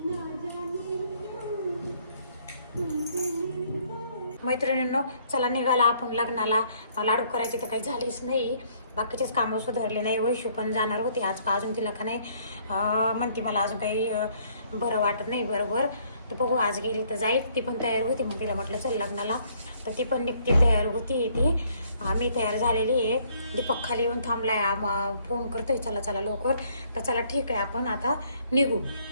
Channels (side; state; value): both; inverted; correlation -0.64